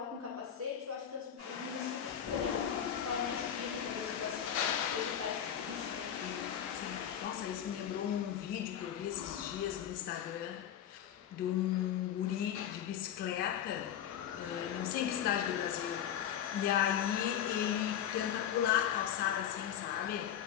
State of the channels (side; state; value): right; quieter; 9.6 dB